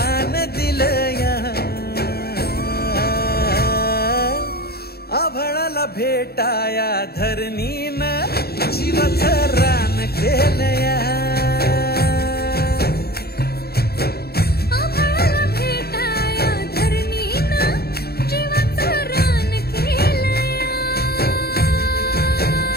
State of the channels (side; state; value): right; late; 0.46 ms